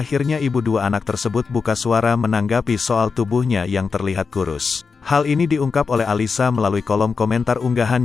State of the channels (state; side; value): quieter; right; 5.1 dB